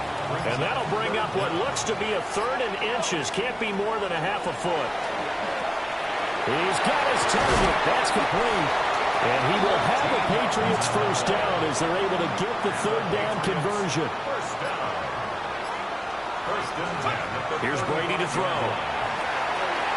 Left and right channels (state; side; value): identical; both; correlation 1.00